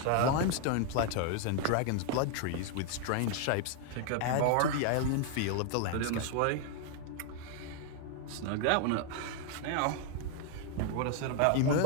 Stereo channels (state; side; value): different; both; correlation 0.00